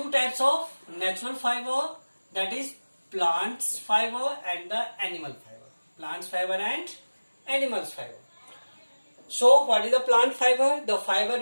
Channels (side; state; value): both; inverted; correlation -1.00